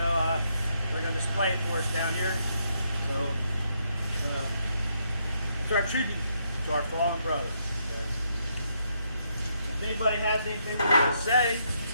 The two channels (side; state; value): both; inverted; correlation -0.76